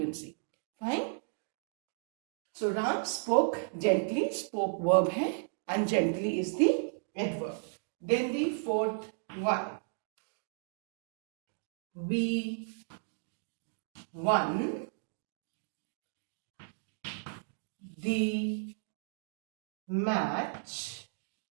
Fine. So Ram spoke gently. Spoke verb है and gently is the adverb. Then the fourth one. We won the match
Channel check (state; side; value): silent; left; digital silence